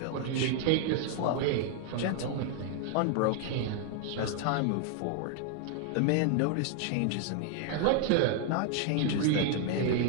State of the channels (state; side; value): different; both; correlation 0.00